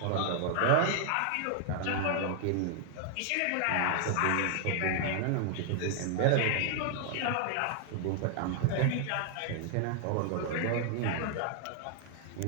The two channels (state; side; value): different; both; correlation 0.00